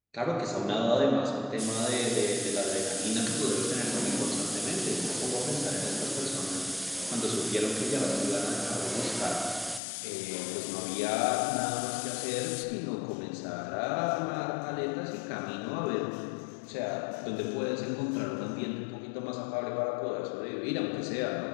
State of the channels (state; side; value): drops out; right; at 9.8 s